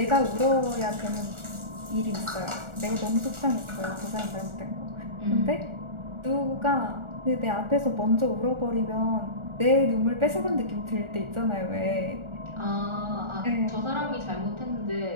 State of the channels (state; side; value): late; left; 1.4 ms